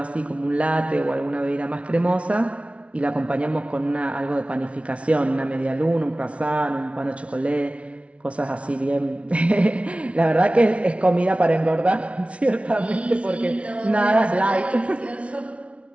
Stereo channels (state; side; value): late; left; 0.062 ms